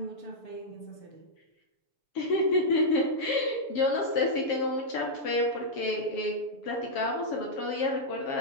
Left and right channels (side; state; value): right; late; 6.9 ms